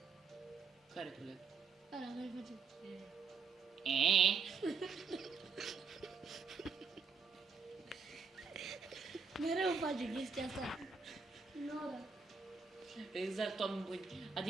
Care coleg? Ăla care face. Mereu face chestia asta. Nora. Exact, oameni buni.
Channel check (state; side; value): quieter; left; 5.3 dB